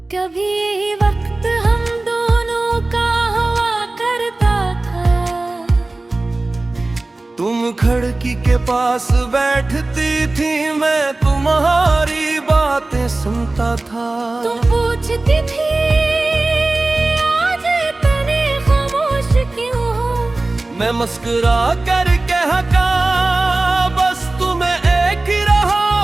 कभी वक्त हम दोनों का हुआ करता था, तुम खिड़की के पास बैठती थी, मैं तुम्हारी बातें सुनता था। तुम पूछती थी आज इतने खामोश क्यों हो, मैं मुस्कुरा कर कहता बस तुम्हें एक ही रहा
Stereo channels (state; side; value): quieter; left; 3.0 dB